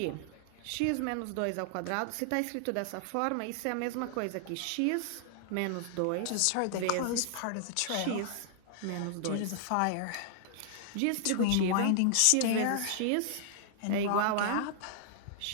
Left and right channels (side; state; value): both; different; correlation -0.01